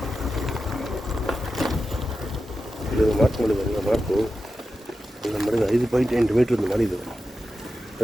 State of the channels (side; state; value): both; normal; correlation 0.91